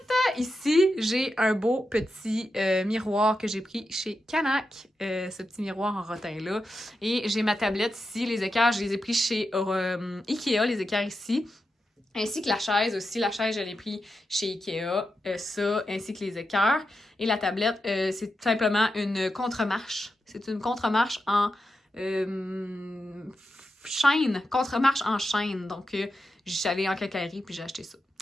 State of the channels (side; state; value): both; normal; correlation 0.88